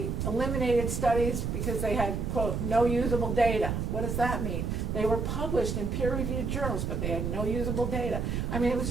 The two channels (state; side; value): noise; right; rumble, 1 dB below the sound